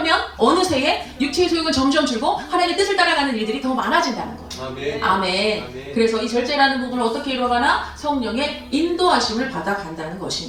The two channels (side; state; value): both; identical; correlation 1.00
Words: 어느새에 육체의 소욕은 점점 줄고 하나님의 뜻을 따라가는 일들이 더 많아진다는 거예요. 아멘. 아멘. 아멘. 그래서 이 절제라는 부분을 어떻게 이루어가나? 성령의 인도하심을 받아간다는